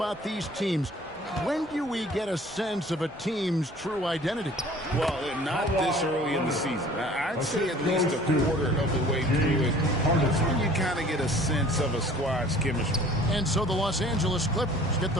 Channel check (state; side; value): normal; both; correlation 0.50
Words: these teams. When do we get a sense of a team's true identity? Well, not this early in the season. I'd say at least a quarter of the way through it. That's when you kind of get a sense of a squad's chemistry. And so the Los Angeles Clippers get